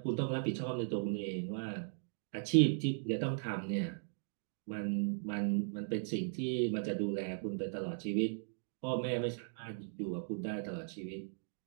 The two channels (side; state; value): left; silent; digital silence